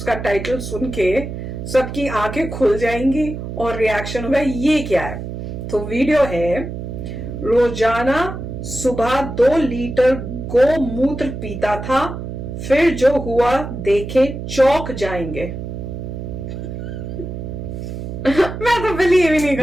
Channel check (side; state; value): right; noise; hum, 7 dB below the sound